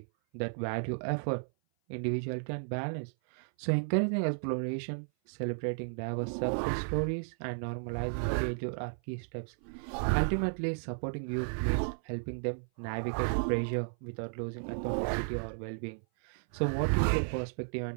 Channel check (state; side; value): silent; left; 55 dB below the other